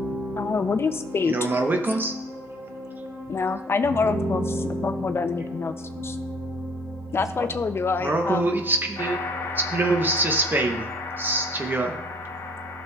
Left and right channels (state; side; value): normal; both; correlation 0.57